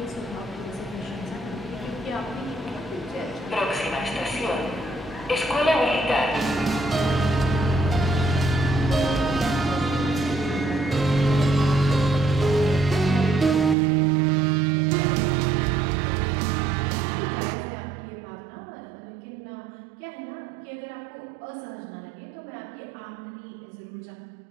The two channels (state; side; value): drops out; left; at 13.8 s